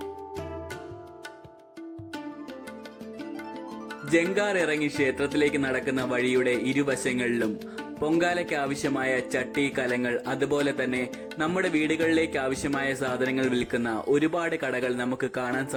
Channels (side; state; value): both; identical; correlation 1.00